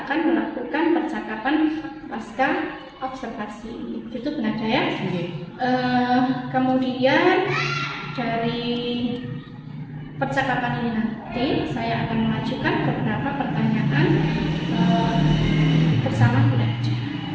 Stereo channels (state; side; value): identical; both; correlation 1.00